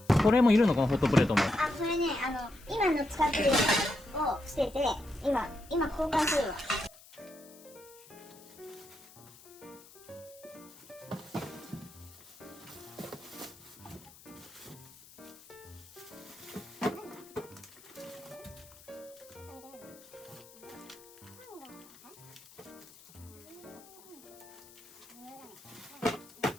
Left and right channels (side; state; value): left; noise; hiss, 21 dB below the sound